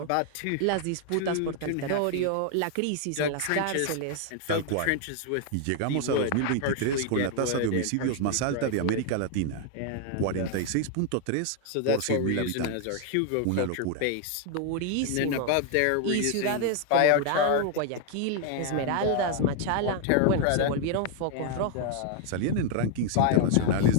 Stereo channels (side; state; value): both; different; correlation 0.00